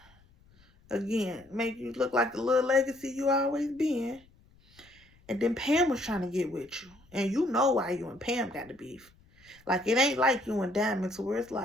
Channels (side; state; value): left; noise; rumble, 29 dB below the sound